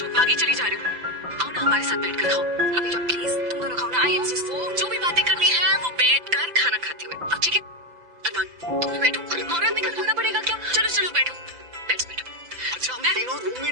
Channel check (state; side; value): late; left; 5.9 ms